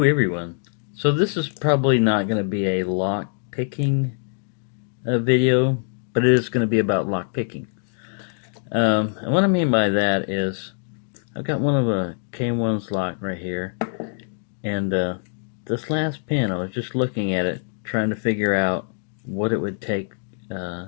everyone. So this is probably not going to be a lock picking video, but it is going to be about lock picking. And what I mean by that is I've got one of a K1's lock right here, and this last pin I was just looking at it trying to figure out what it would take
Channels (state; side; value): silent; right; digital silence